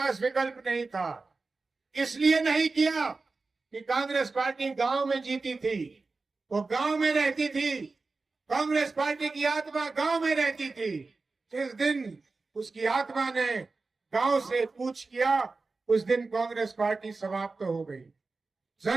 विकल्प नहीं था, इसलिए नहीं किया कि कांग्रेस पार्टी गांव में जीती थी, वो गांव में रहती थी। कांग्रेस पार्टी की आत्मा गांव में रहती थी। जिस दिन उसकी आत्मा ने गांव से कूच किया, उस दिन कांग्रेस पार्टी समाप्त हो गई।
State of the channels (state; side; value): quieter; left; 3.9 dB